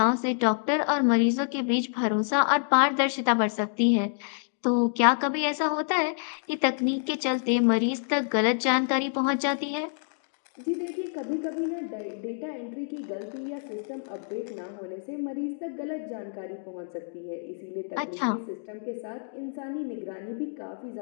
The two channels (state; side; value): silent; right; digital silence